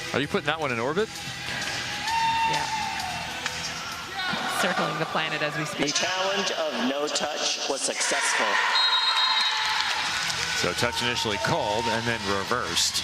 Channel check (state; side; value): identical; both; correlation 1.00